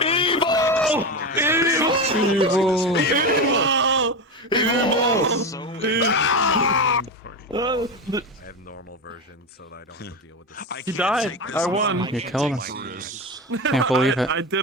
Evil! Evil! I have normal version so that I don't have to deal with this. He died. I won. You killed him. Can't believe it. I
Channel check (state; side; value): normal; both; correlation 0.19